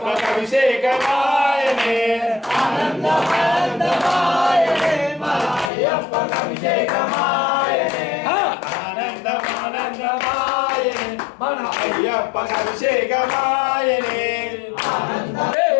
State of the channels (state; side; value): drops out; right; at 5.7 s